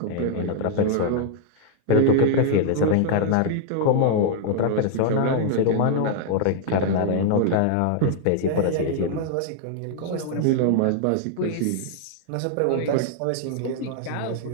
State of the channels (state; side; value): different; both; correlation -0.01